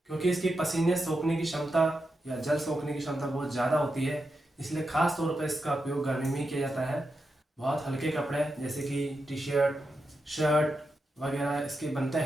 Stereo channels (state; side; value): normal; both; correlation 0.87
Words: क्योंकि इसकी पसीने सोखने की क्षमता या जल सोखने की क्षमता बहुत ज़्यादा होती है, इसलिए खास तौर पर इसका उपयोग गर्मी में ही किया जाता है। बहुत हल्के कपड़े जैसे कि टी शर्ट, शर्ट वगैरह इसके बनते